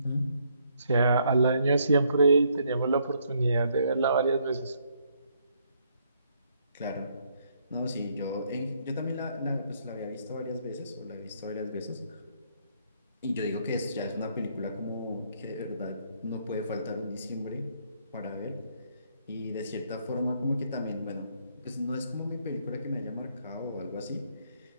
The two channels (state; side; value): inverted; both; correlation -0.71